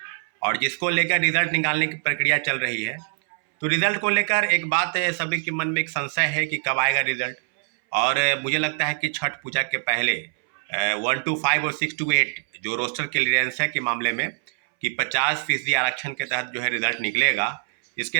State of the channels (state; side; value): silent; left; 63 dB below the other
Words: और जिसको लेकर रिजल्ट निकालने की प्रक्रिया चल रही है। तो रिजल्ट को लेकर एक बात है, सभी के मन में एक संशय है कि कब आएगा रिजल्ट। और मुझे लगता है कि छठ पूजा के पहले 1 to 5 और 6 to 8 जो रोस्टर क्लियरेंस है के मामले में कि 50% आरक्षण के तहत जो है रिजल्ट निकलेगा।